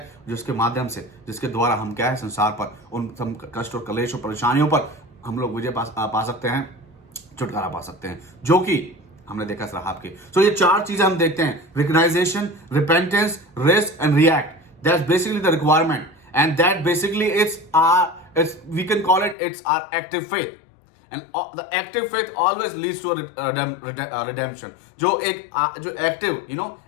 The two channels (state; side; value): drops out; right; at 19.4 s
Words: जिसके माध्यम से, जिसके द्वारा हम क्या है, संसार पर उन कष्ट और कलेश और परेशानियों पर हम लोग विजय पा सकते हैं, छुटकारा पा सकते हैं, जो कि हमने देखा रहाब के। सो ये 4 चीजें हम देखते हैं, recognition, repentance, rest and react. That's basically the requirement, and that basically we can call it's our active faith. And the active faith always leads to a redemption. जो एक्टिव